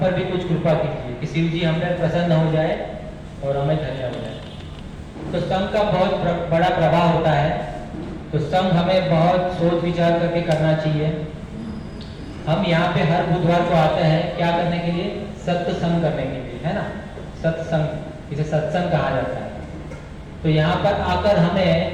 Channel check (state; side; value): identical; both; correlation 1.00